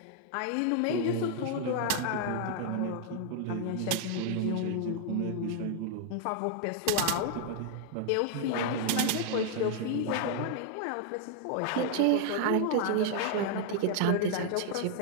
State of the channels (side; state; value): both; different; correlation 0.00